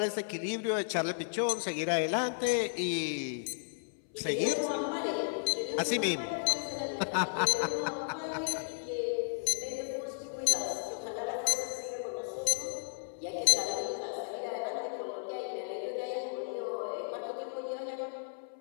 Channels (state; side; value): silent; right; 55 dB below the other